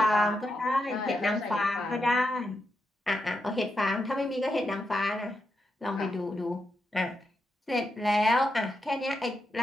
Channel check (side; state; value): both; normal; correlation 0.85